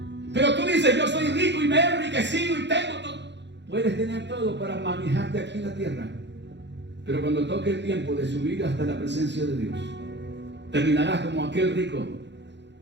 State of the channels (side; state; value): left; late; 0.52 ms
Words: Pero tú dices: yo soy rico y me he enriquecido y tengo todo. Puedes tener todo para manejarte aquí en la tierra, pero cuando toque el tiempo de subir hasta la presencia de Dios, terminarás como aquel rico,